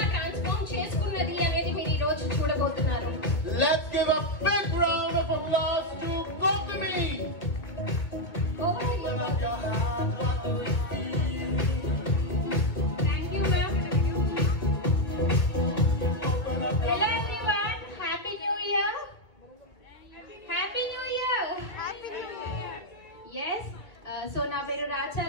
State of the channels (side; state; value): right; late; 2.4 ms